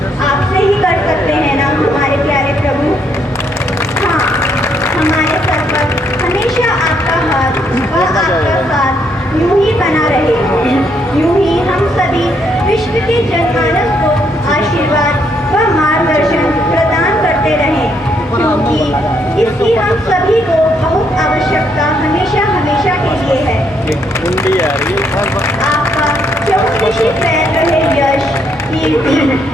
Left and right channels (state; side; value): normal; both; correlation 0.73